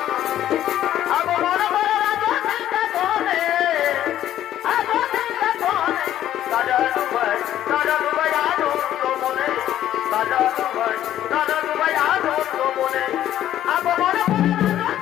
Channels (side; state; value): right; quieter; 12.0 dB